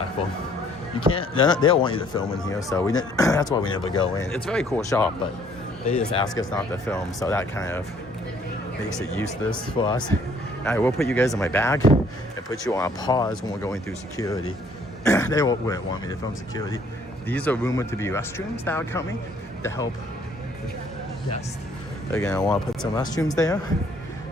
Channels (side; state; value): both; normal; correlation 0.61